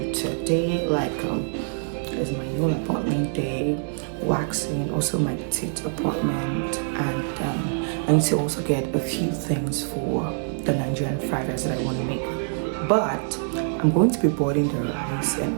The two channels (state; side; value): silent; left; 62 dB below the other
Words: today, like there's my nail appointment day, waxing, also my teeth appointment, and I need to also get a few things for the Nigerian fried rice that I want to make. But I'm going to be boiling the rice and